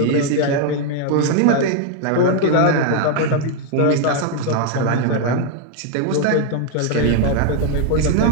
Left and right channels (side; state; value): both; different; correlation 0.01